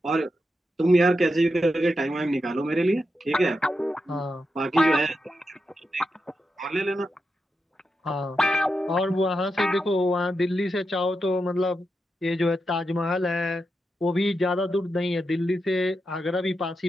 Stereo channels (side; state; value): both; normal; correlation 0.87